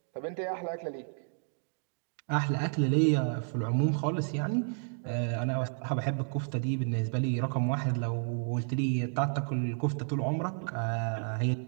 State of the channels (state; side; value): silent; left; 57 dB below the other